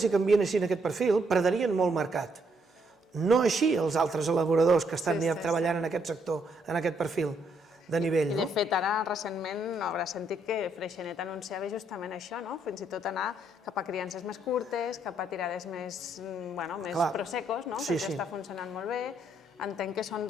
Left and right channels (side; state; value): both; normal; correlation 0.73